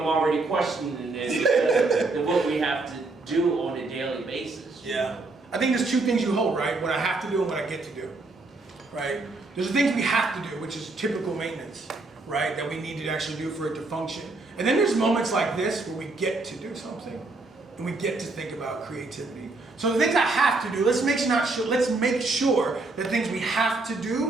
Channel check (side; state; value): left; quieter; 3.4 dB